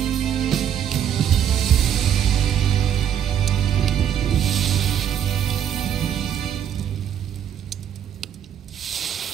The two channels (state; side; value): quieter; left; 9.4 dB